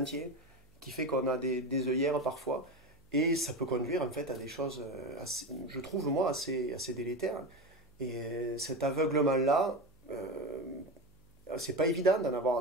qui fait qu'on a des œillères parfois. Et ça peut conduire en fait à des choses, je trouve moi, assez délétères. Et cet aveuglement-là, c'est pas évident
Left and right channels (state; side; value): noise; right; hum, 29 dB below the sound